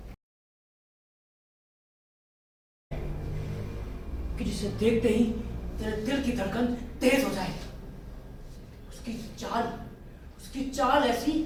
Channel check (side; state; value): both; identical; correlation 1.00